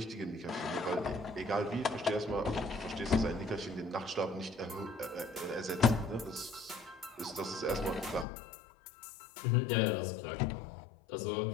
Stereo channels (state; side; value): drops out; right; at 8.2 s